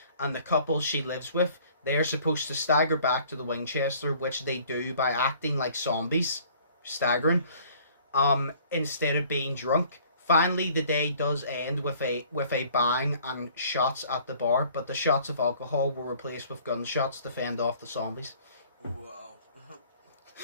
and the couple she lives with. They are supposed to stagger back to the Winchester, which they do by acting like zombies, staggering, instead of being drunk. Finally, the day does end with a bang and shots at the bar, but the shots of alcohol were replaced with gunshots to fend off the zombies. Wow.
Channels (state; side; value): inverted; both; correlation -0.54